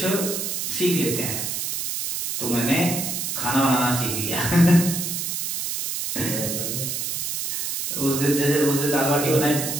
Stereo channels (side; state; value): right; noise; hiss, 3 dB below the sound